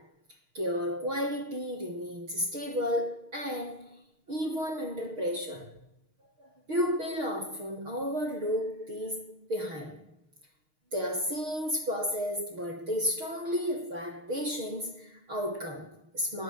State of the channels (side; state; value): left; late; 6.5 ms